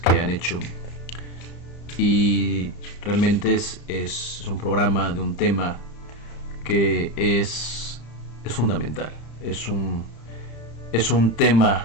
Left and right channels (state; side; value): late; right; 34 ms